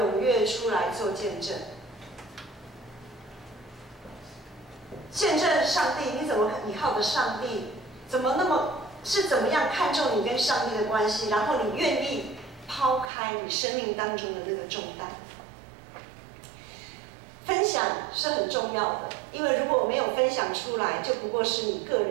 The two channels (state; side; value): drops out; left; at 13.1 s